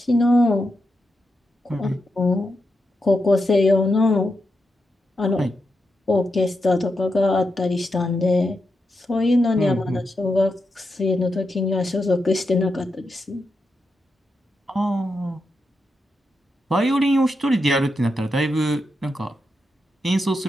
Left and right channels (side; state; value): both; normal; correlation 0.86